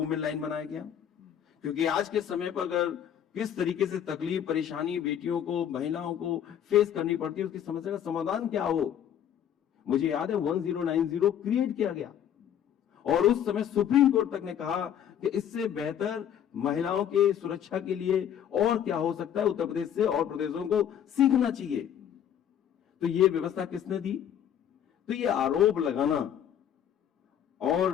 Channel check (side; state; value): right; quieter; 9.6 dB